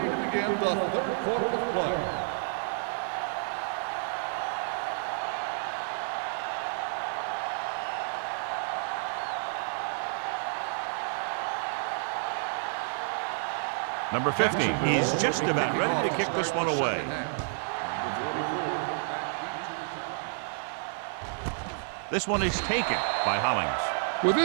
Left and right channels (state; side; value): silent; left; 58 dB below the other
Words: to begin the third quarter of play. Number 50 is just about ready to kick this one away. This one is taken by Hollings. With